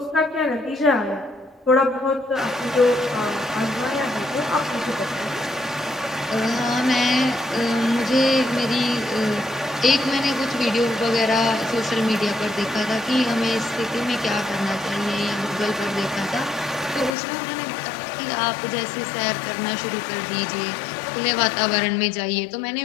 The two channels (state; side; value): drops out; right; at 17.2 s